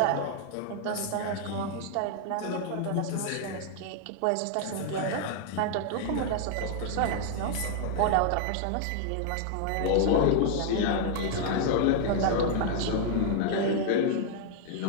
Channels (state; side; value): different; both; correlation -0.01